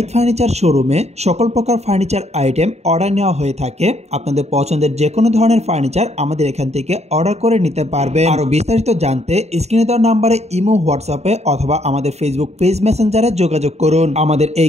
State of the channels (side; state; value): left; late; 0.31 ms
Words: ফার্নিচার শোরুমে সকল প্রকার ফার্নিচার আইটেম অর্ডার নেওয়া হয়ে থাকে। আপনাদের পছন্দের যে কোনো ধরনের ফার্নিচার আমাদের এখান থেকে অর্ডার করে নিতে পারবেন। আরো বিস্তারিত জানতে স্ক্রিনে দেওয়া নাম্বারে ইমো, হোয়াটসঅ্যাপে অথবা আমাদের ফেসবুক পেজ মেসেঞ্জারে যোগাযোগ করুন। আমাদের